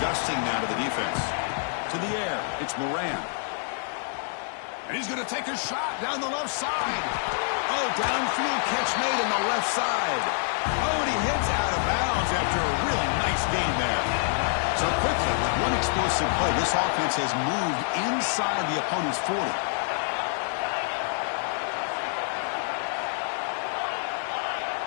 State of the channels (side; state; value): right; silent; digital silence